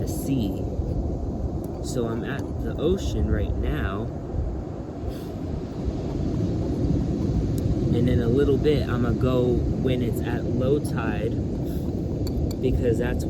sea. So I'm at the ocean right now, and in a little bit I'm gonna go when it's at low tide, because that's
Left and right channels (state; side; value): identical; both; correlation 1.00